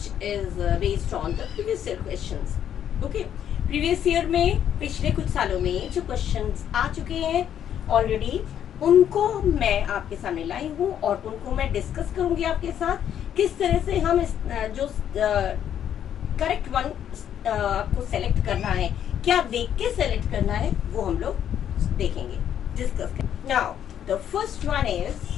is based on the previous year questions. Okay, previous year में पिछले कुछ सालों में जो questions आ चुके हैं already, उनको मैं आपके सामने लाई हूँ और उनको मैं डिस्कस करूंगी आपके साथ किस तरह से हम इस जो करेक्ट वन आपको सेलेक्ट करना है, क्या देख के सेलेक्ट करना है, वो हम लोग देखेंगे, डिस्कस करेंगे. Now the first one is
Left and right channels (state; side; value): quieter; right; 9.7 dB